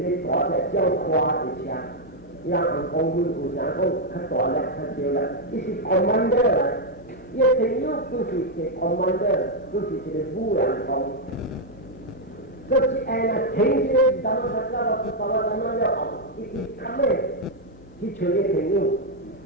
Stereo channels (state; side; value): normal; both; correlation -0.01